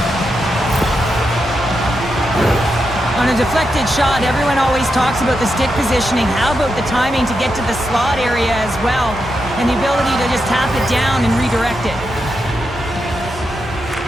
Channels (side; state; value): both; normal; correlation 0.86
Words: On a deflected shot, everyone always talks about the stick positioning. How about the timing to get to the slot area as well? And the ability to just tap it down and redirect it.